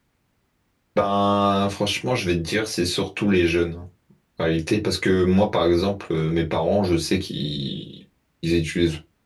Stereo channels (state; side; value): identical; both; correlation 1.00